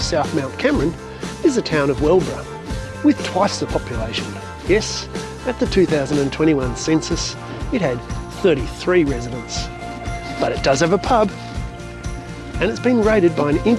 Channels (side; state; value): both; identical; correlation 1.00